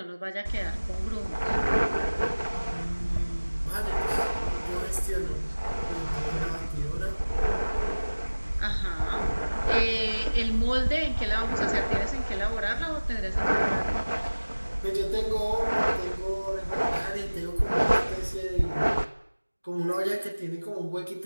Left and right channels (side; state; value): both; inverted; correlation -1.00